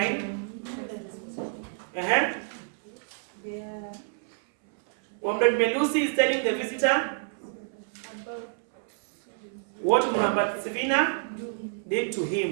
Comrade Melusi is telling the visitor what Muramba Sivina did to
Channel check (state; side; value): silent; left; 59 dB below the other